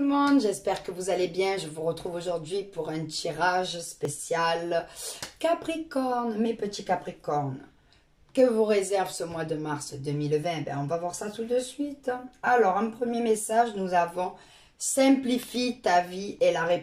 monde, j'espère que vous allez bien. Je vous retrouve aujourd'hui pour un tirage spécial Capricorne, mes petits Capricornes. Que vous réserve ce mois de mars 2020? Ben, on va voir ça tout de suite. Alors, un premier message, nous avons simplifie ta vie et la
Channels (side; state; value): both; identical; correlation 1.00